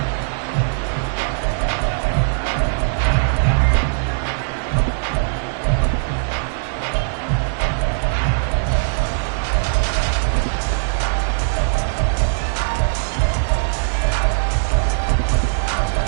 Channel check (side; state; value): left; silent; digital silence